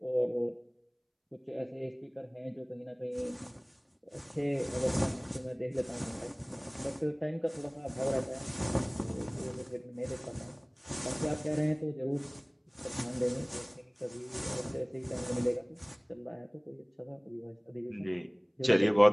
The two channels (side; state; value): both; identical; correlation 1.00